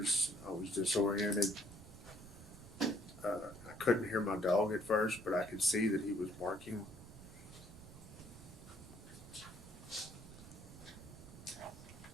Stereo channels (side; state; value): right; noise; rumble, 17 dB below the sound